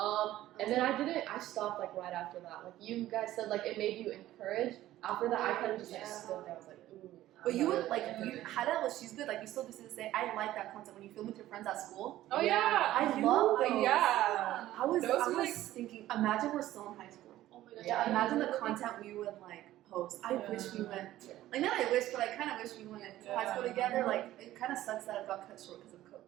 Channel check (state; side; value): quieter; left; 14.5 dB